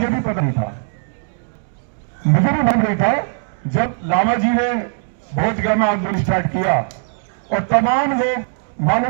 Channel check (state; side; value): silent; left; 66 dB below the other